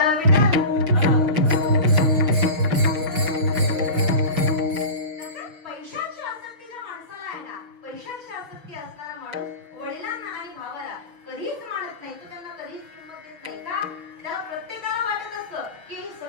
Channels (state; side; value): late; left; 6.4 ms